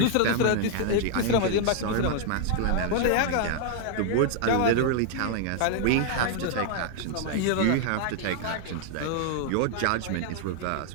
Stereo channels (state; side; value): different; both; correlation 0.00